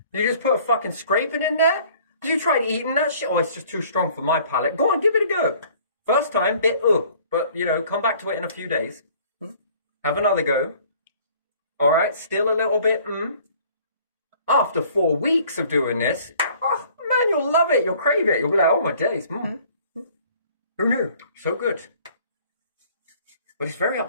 You just put a fucking scraping in there? You tried eating that shit? Oh, it's just too strong for my palate. Go on, give it a go. First time, bit but you know, come back to it in a few days. Have another go. All right, still a little bit. After 4 weeks of doing this, oh man, you'll love it. You'll crave it. You'll be like, oh my days. Who knew? So good. But it's very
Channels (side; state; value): both; inverted; correlation -0.54